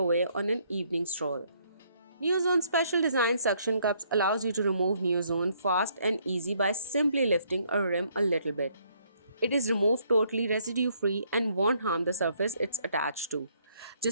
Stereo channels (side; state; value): both; inverted; correlation -0.68